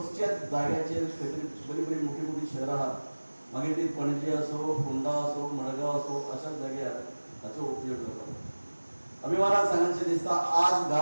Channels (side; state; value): both; inverted; correlation -1.00